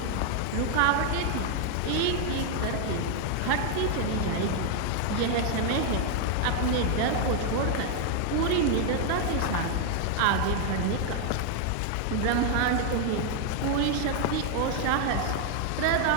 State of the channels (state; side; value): different; both; correlation 0.00